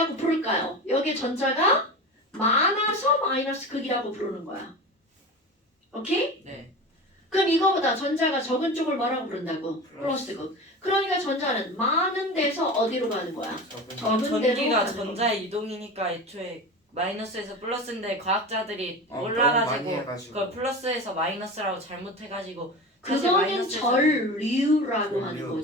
부를까요? 여기에 전자가 많아서 마이너스 극이라고 부르는 거야. 오케이? 네. 그럼 이거보다 전자가 적은 쪽을 뭐라고 부른다고? 플러스 극. 그러니까 전자는 많은 데서 어디로 가는 거야? 적은 데로 전기가 가는 전자의 이동이니까 애초에 마이너스에서 플러스인데 과학자들이 너무 많이 몰라가지고 해가지고. 그걸 플러스에서 마이너스라고 잘못해가지고 그거는 전류라고 전류. 하는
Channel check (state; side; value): normal; both; correlation 0.29